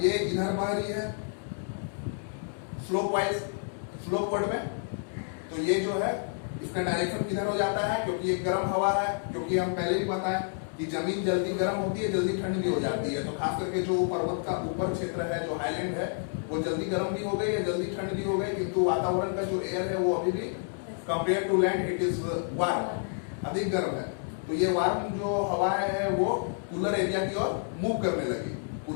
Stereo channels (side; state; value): right; silent; 58 dB below the other